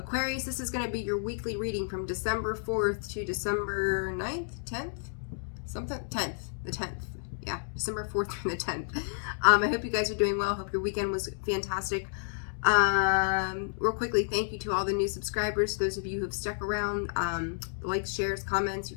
this is going to be your weekly reading from December 4th to December 9th, 10th? Something? 10th. The 10th. Yeah, December 4th through the 10th. I hope you guys are doing well. Hope your weekend was fantastic. Real quickly, thank you to all the new subscribers, those of you who have stuck around. Likes, shares, comments,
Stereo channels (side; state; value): right; silent; digital silence